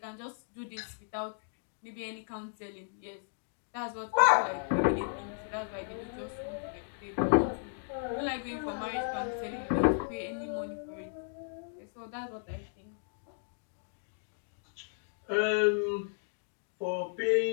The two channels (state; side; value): silent; right; digital silence